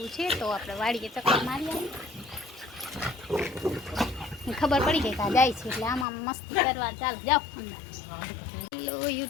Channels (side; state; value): right; drops out; at 6.1 s